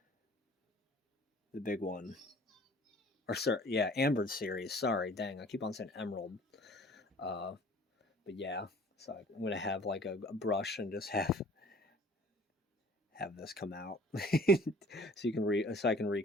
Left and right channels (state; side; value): normal; both; correlation 0.50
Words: The big one. Or sorry, yeah, Amber Series. Sorry, dang, I keep on saying Emerald. But yeah, so I'm gonna have like a brush and just have this come out, so I can